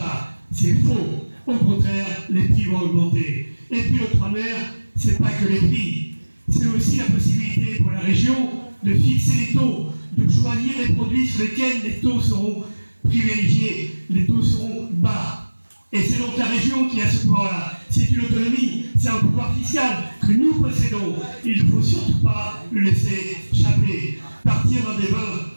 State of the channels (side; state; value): both; inverted; correlation -1.00